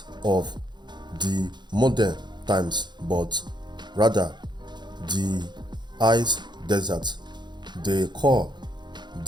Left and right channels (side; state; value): left; late; 0.21 ms